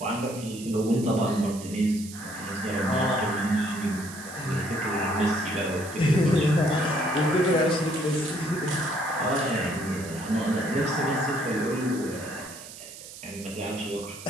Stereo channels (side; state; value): right; noise; hiss, 14 dB below the sound